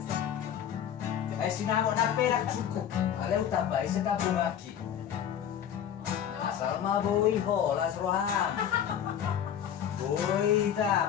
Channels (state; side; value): quieter; right; 9.3 dB